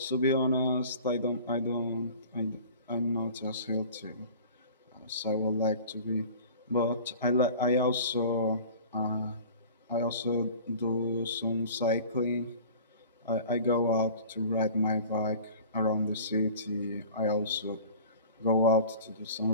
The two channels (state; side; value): inverted; both; correlation -0.43